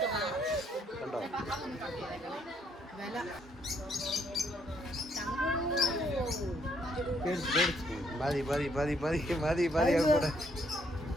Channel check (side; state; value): both; normal; correlation 0.70